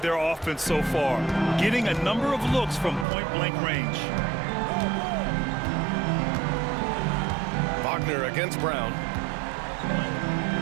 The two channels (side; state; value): left; drops out; at 3.1 s